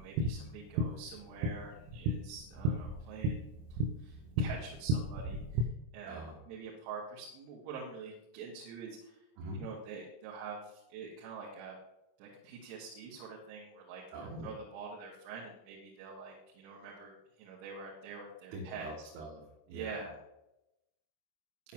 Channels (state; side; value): late; left; 26 ms